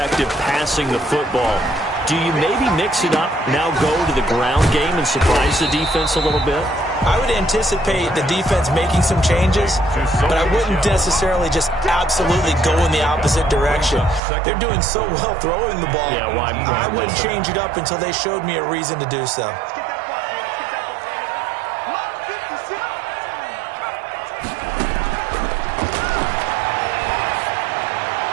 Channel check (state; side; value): drops out; left; at 14.2 s